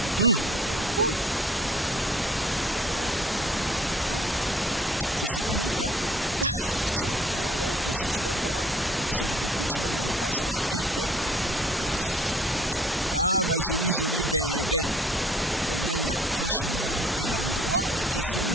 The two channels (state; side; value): normal; both; correlation 0.55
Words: C'est satanique, hein? Tiens, ouais, toi aussi tu dois boire. Parce que peut-être que tu m'as mis le poison. Ah, ma jolie bébé. Onyanya, franchement, et l'endroit qui est si